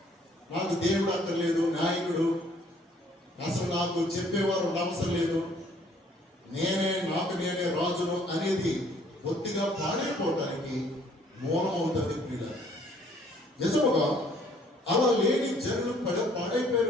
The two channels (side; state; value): both; normal; correlation 0.61